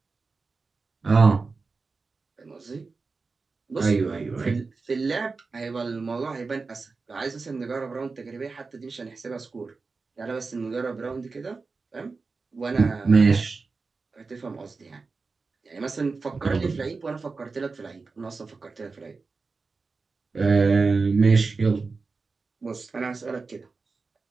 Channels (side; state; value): left; quieter; 4.2 dB